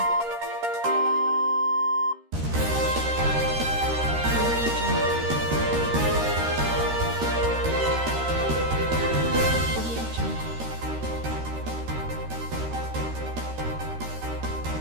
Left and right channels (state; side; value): late; left; 13 ms